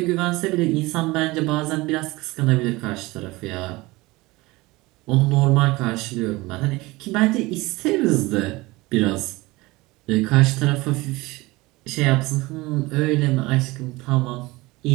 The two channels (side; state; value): left; quieter; 21.5 dB